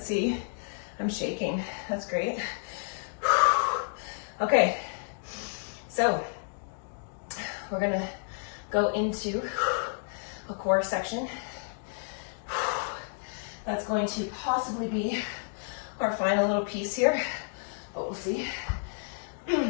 see. I'm shaking. That's great. Okay. So, we're gonna go into a core section. That's going to possibly be our final little piece here, but we'll see.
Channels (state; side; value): silent; right; digital silence